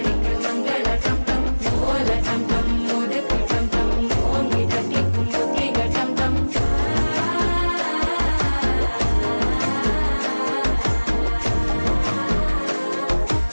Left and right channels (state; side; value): inverted; both; correlation -1.00